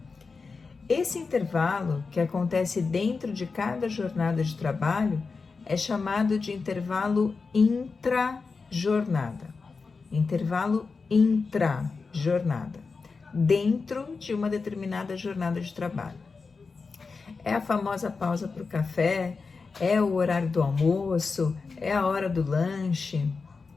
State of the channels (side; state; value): right; quieter; 4.5 dB